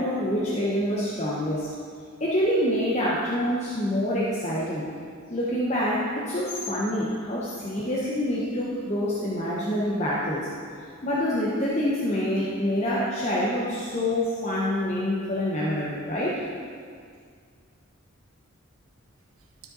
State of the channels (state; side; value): normal; both; correlation 0.42